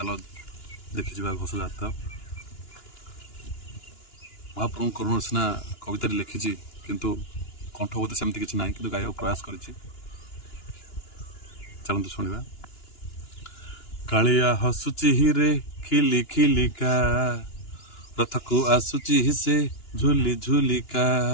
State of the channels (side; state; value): right; late; 2.9 ms